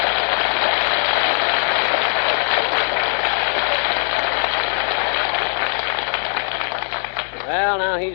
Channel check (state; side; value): silent; right; 66 dB below the other